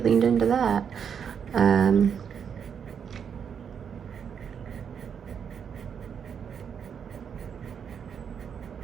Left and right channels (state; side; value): quieter; left; 7.4 dB